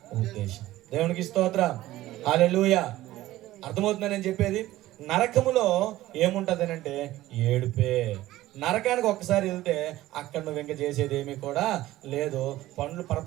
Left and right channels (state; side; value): quieter; left; 15.9 dB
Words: ఉద్దేశం. దేవునికి స్తోత్రం. హల్లెలూయా. అర్థమవుతుందని నేను చెప్పేది. నరకములో ఏముంటది అంటే ఏడుపే. నరకానికి ఒక్కసారి వెళ్తే అక్కడ నువ్వు ఇంకా చేసేది ఏమీ కూడా లేదు, పండ్లు